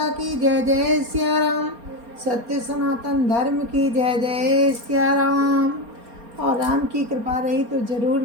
की जय जय श्याराम। सत्य सनातन धर्म की जय जय श्याराम। और राम की कृपा रही तो ज़रूर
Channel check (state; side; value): late; left; 4.3 ms